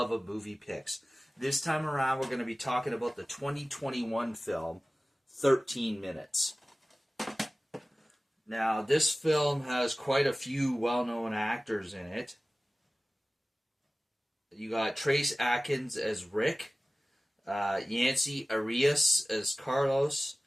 of Movie Picks. This time around, we're going to be talking about the 2021 film, 13 Minutes. Now, this film has quite a few well-known actors in it. You got Trace Atkins as Rick, Yancey Arias as Carlos,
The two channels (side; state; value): both; normal; correlation 0.97